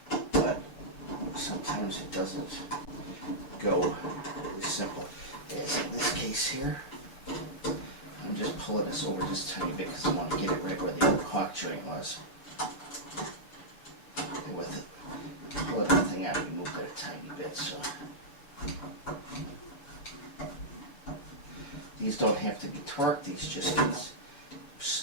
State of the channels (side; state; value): right; late; 7.1 ms